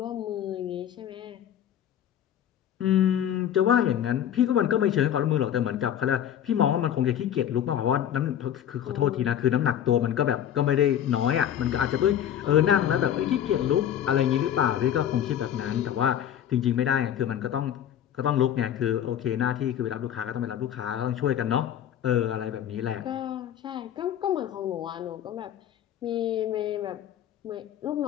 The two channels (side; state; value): right; quieter; 10.2 dB